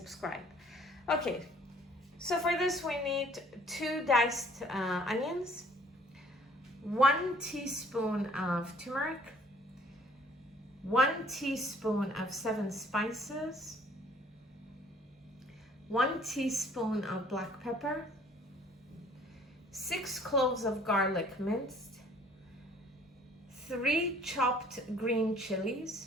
Okay, so for this we need 2 diced onions, 1 teaspoon of turmeric, 1 teaspoon of 7 spices, 1 teaspoon of black pepper, 6 cloves of garlic minced, 3 chopped green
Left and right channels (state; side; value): normal; both; correlation 0.57